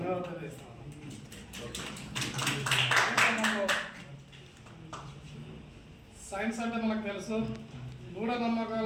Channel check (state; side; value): identical; both; correlation 1.00